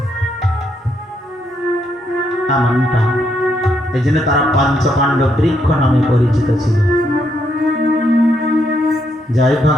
এমনটা এই জন্য তারা পঞ্চপাণ্ডব বৃক্ষ নামে পরিচিত ছিল। জয়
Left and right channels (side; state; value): both; normal; correlation 0.76